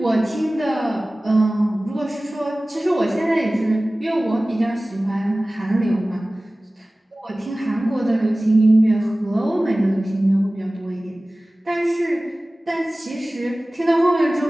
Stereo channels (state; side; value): normal; both; correlation 0.97